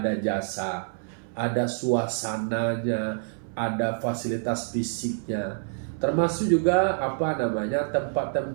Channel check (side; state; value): left; silent; 60 dB below the other